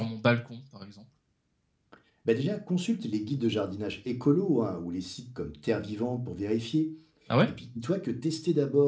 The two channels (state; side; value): identical; both; correlation 1.00